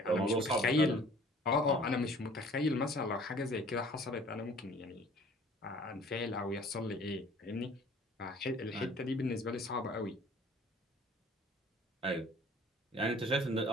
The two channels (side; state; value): both; normal; correlation 0.51